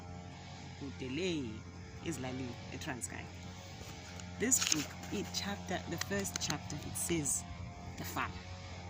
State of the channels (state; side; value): identical; both; correlation 1.00